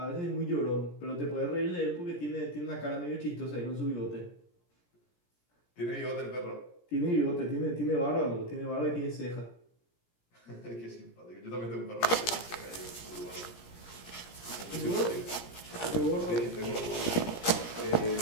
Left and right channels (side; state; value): right; late; 17 ms